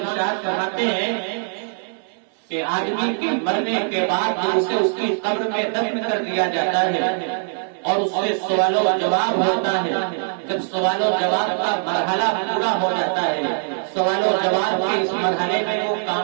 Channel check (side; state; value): left; silent; 64 dB below the other